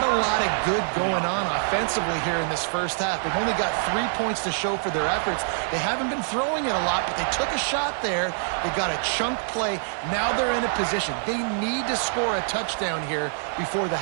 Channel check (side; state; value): left; silent; digital silence